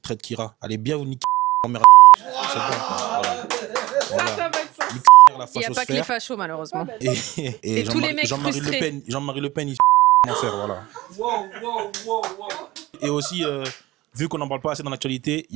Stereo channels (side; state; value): left; quieter; 18.5 dB